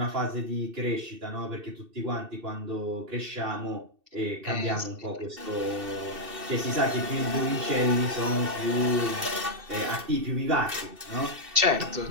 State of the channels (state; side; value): late; left; 2.7 ms